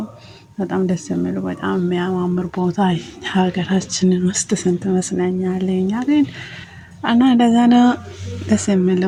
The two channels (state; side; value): identical; both; correlation 1.00